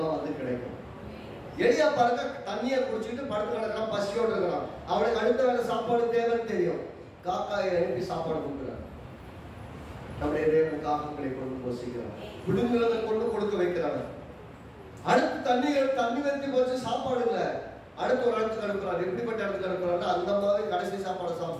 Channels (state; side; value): identical; both; correlation 1.00